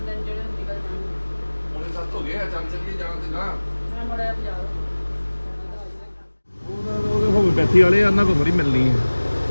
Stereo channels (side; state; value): both; inverted; correlation -1.00